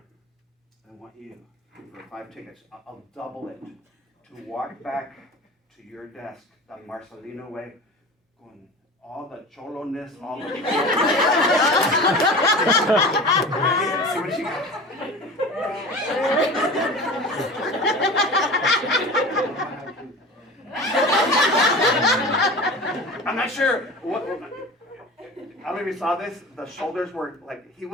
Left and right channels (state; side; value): normal; both; correlation 0.35